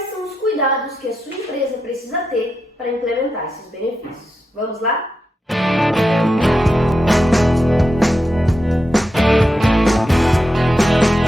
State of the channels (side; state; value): both; normal; correlation 0.87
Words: são os cuidados que a sua empresa precisa ter para implementar esses benefícios. Vamos lá?